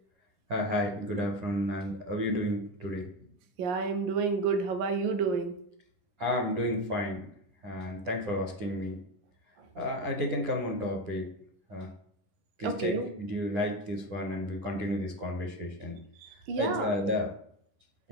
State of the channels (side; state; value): left; late; 9.9 ms